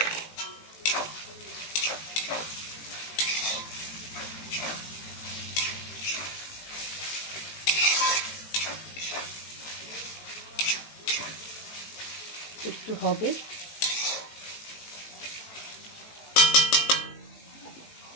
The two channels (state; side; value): late; right; 18 ms